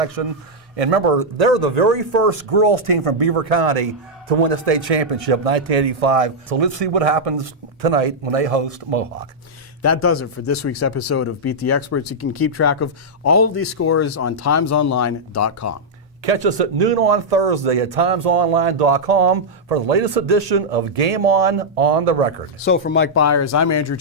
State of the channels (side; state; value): both; normal; correlation -0.06